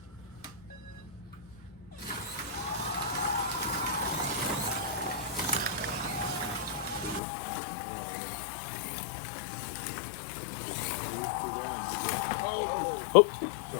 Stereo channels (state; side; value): drops out; right; at 7.2 s